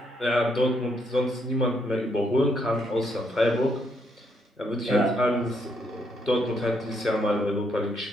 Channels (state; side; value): normal; both; correlation 0.74